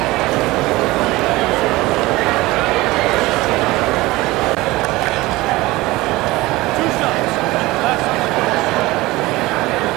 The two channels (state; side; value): quieter; left; 19.8 dB